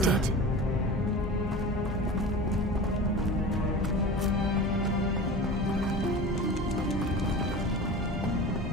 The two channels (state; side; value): normal; both; correlation 0.33